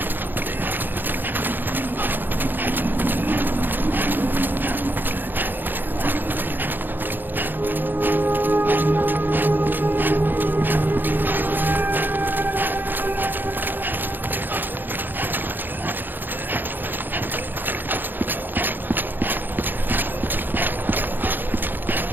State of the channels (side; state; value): left; late; 0.091 ms